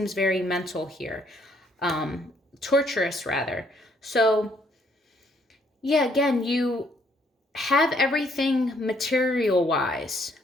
very mental here. Torturous rather. So yeah, again, you have everything material wise,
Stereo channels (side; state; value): both; normal; correlation 0.68